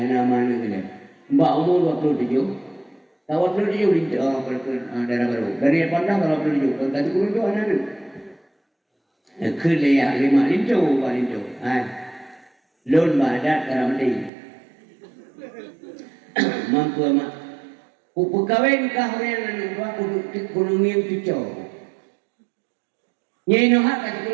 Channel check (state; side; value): drops out; left; at 14.3 s